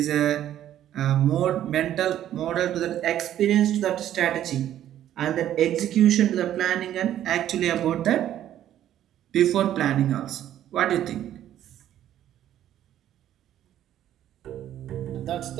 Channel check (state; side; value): quieter; left; 11.7 dB